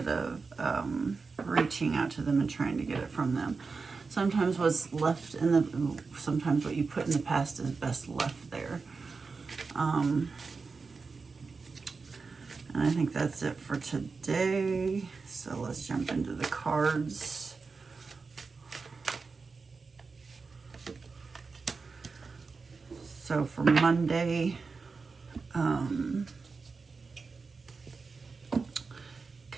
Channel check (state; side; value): quieter; left; 4.5 dB